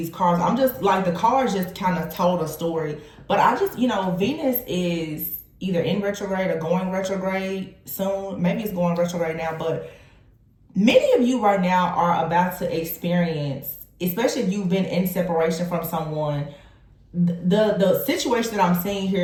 cards. I'm just like, the cards just kind of told a story. But I just, Venus is either in retrograde or going retrograde soon. Maybe it's going retrograde now, but many of you right now are about to experience, especially if you've been in separation from someone, the situation that I'm seeing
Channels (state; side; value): identical; both; correlation 1.00